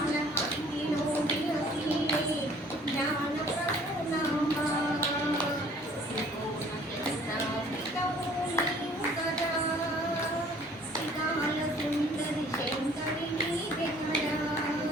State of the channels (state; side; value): normal; both; correlation 0.54